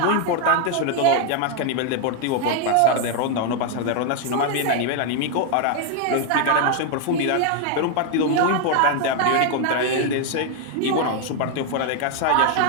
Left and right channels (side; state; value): both; different; correlation 0.01